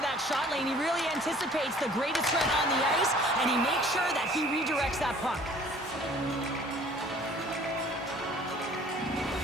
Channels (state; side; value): normal; both; correlation 0.52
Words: that shot lane. He really anticipates the greatest threat on the ice, and he makes sure that he redirects that puck.